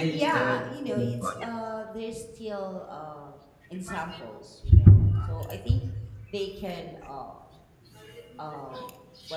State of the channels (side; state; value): both; identical; correlation 1.00